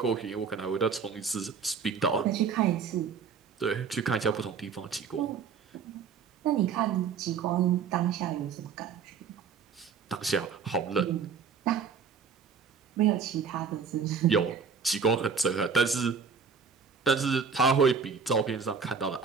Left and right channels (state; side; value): quieter; left; 6.0 dB